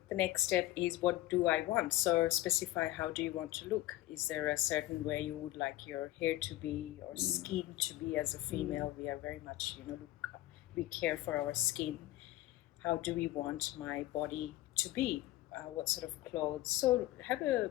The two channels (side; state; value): right; quieter; 16.2 dB